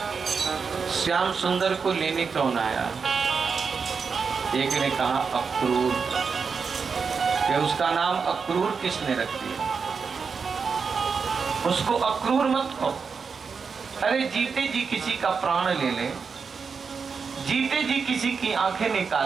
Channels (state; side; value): quieter; left; 5.5 dB